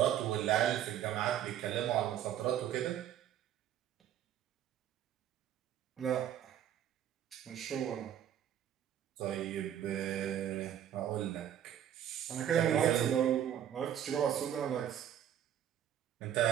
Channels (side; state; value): left; quieter; 10.4 dB